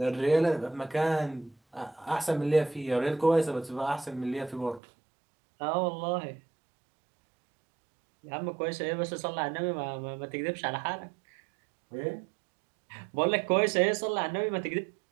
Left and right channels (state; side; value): drops out; left; at 4.8 s